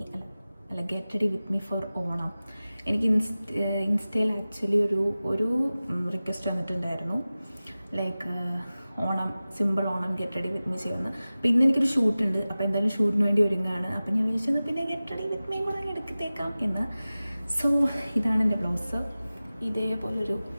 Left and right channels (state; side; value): inverted; both; correlation -0.97